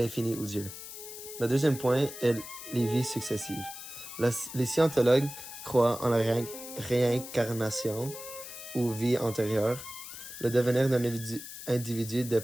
ou Dieu. Le deuxième point est les vies successives. Les scientologues croient en la réincarnation ou vie antérieure. Le devenir d'un individu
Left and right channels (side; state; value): left; noise; hiss, 11 dB below the sound